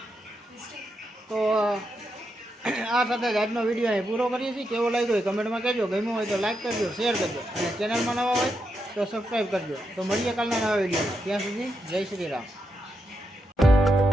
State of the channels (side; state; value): both; normal; correlation 0.83